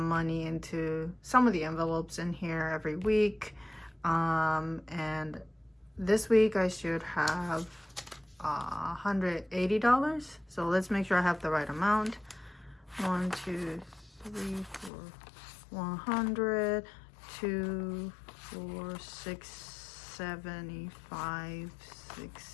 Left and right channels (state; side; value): drops out; right; at 14.9 s